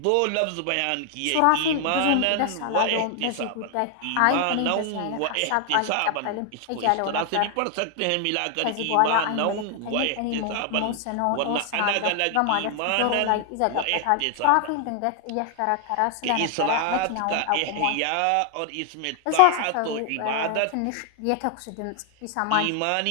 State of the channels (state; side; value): different; both; correlation 0.00